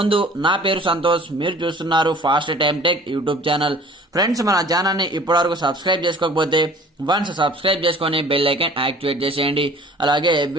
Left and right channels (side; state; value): both; normal; correlation 0.48